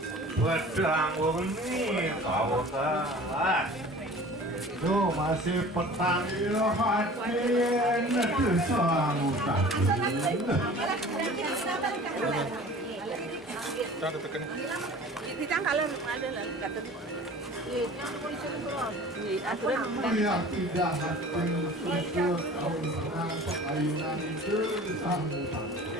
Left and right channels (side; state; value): both; normal; correlation 0.43